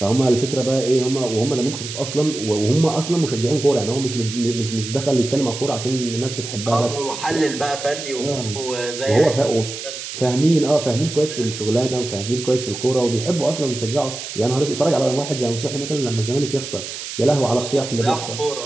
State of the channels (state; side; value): noise; right; hiss, 8 dB below the sound